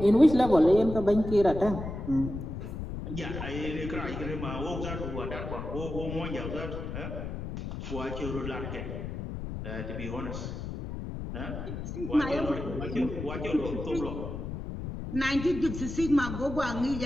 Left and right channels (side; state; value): left; noise; rumble, 6 dB below the sound